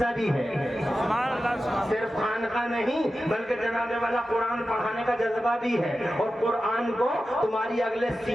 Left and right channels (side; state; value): both; normal; correlation 0.93